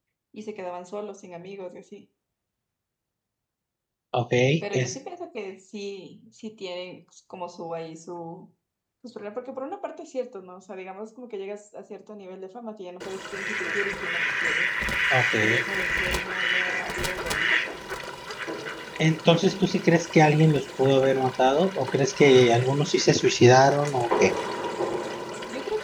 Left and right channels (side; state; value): both; identical; correlation 1.00